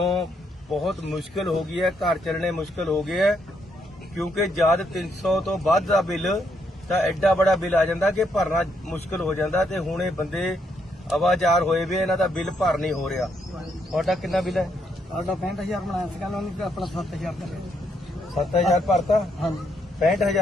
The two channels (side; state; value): both; normal; correlation 0.75